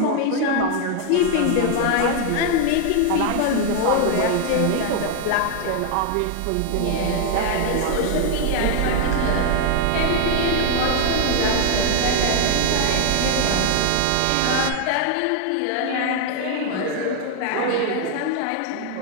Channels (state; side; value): different; both; correlation 0.01